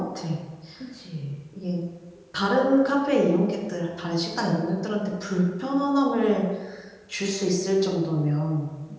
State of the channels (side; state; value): both; identical; correlation 1.00